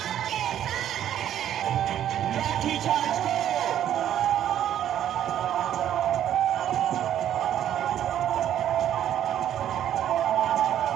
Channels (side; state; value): left; quieter; 10.9 dB